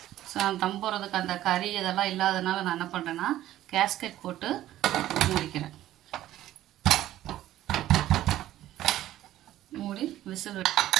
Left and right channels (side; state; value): left; quieter; 13.7 dB